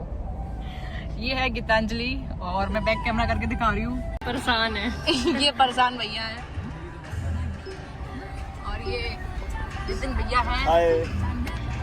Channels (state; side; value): identical; both; correlation 1.00